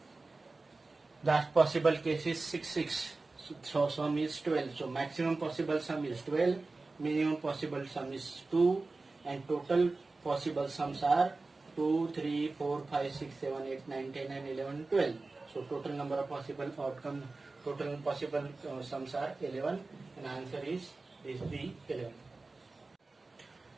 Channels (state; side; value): quieter; left; 3.5 dB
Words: last possible case is 6, 6. So sum is 12. So maximum possible sum is 12, minimum possible sum is 2, and total possible sums are 2, 3, 4, 5, 6, 7, 8, 9, 10 and 11, 12. So total number of possible outcomes, total possible sums are 11, and answer is B 11.